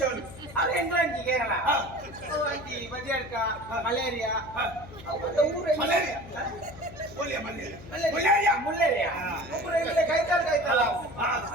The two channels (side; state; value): left; noise; hum, 17 dB below the sound